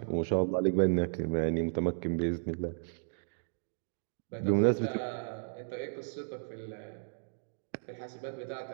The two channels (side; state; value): left; silent; digital silence